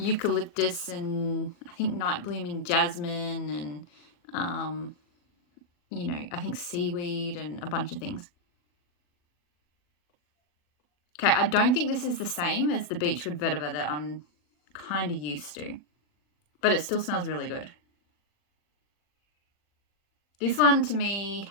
and I think night blooming jasmine and you know, I think seaweed and a bunch of things. Okay, I don't think this is the same as the beechwood vetiver that I'm kind of used to, but it still smells really good. This one to me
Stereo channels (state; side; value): late; right; 40 ms